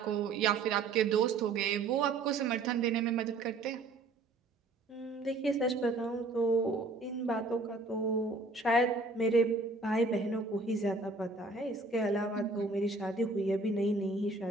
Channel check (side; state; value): left; quieter; 3.4 dB